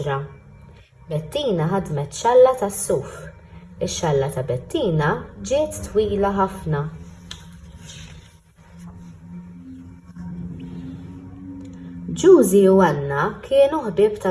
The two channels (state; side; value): identical; both; correlation 1.00